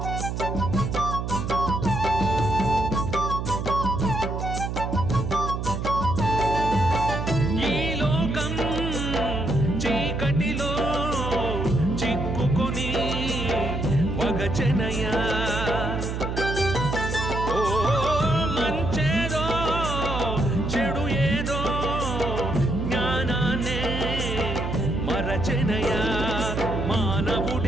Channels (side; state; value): right; noise; hum, 3 dB below the sound